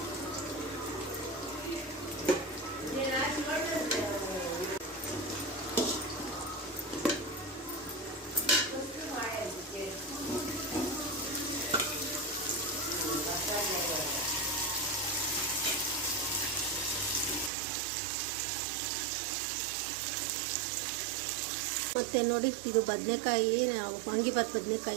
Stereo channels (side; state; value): left; drops out; at 17.5 s